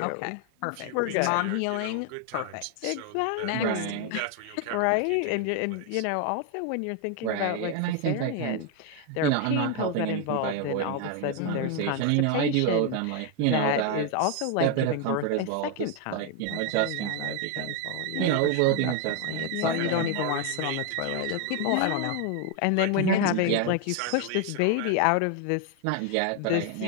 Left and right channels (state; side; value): different; both; correlation 0.01